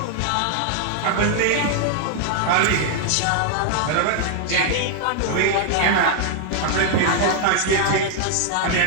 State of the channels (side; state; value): both; different; correlation 0.00